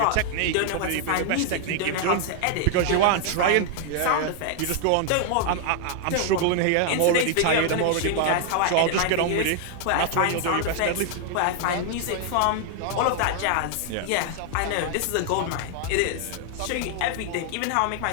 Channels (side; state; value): both; different; correlation 0.00